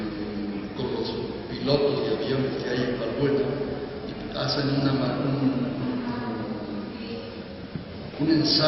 con los pilotos de aviones que hay en Valbuena y hacen un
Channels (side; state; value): both; identical; correlation 1.00